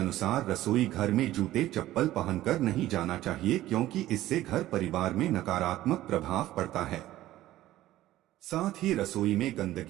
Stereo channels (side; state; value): left; quieter; 14.9 dB